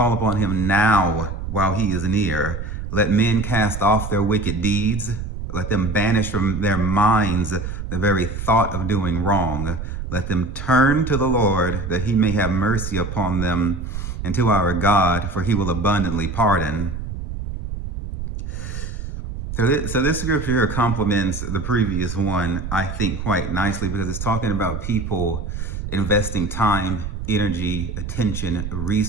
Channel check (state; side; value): noise; right; rumble, 6 dB below the sound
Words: upon him now while he is near. Let men cast off their wicked deeds. Let them banish from their minds the very thought of doing wrong. Let them turn to the Lord, that he may have mercy upon them, and to our God, for he will abundantly pardon." So this scripture here complements the previous one, I think, quite nicely, because it's talking about people investing time, energy, attention,